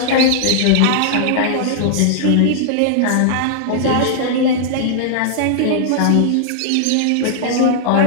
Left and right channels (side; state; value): both; different; correlation -0.01